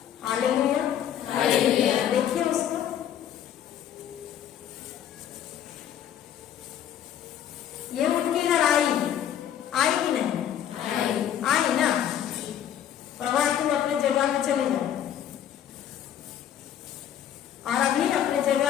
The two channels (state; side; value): quieter; right; 10.1 dB